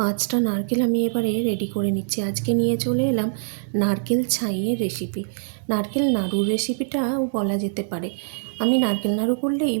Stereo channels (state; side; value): silent; left; digital silence